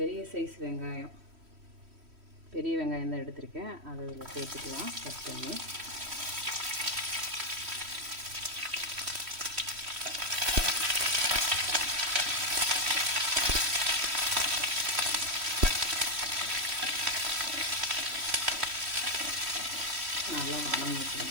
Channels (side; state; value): left; late; 3.1 ms